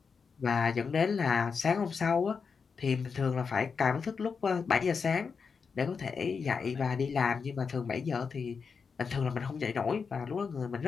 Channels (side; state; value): right; quieter; 5.6 dB